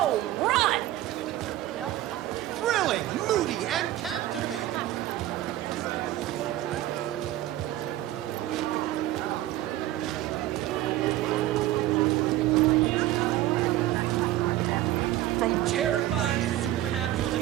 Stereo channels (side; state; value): left; quieter; 14.8 dB